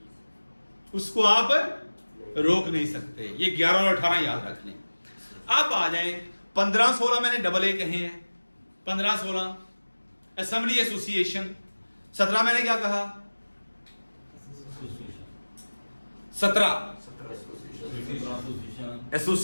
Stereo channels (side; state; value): both; inverted; correlation -1.00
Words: उसको आप रोक नहीं सकते। ये 11 और 18 याद रख लें। अब आ जाए 15-16 मैंने AA कहे हैं, 15-16 असेंबली एसोसिएशन। 17 मैंने क्या कहा? 17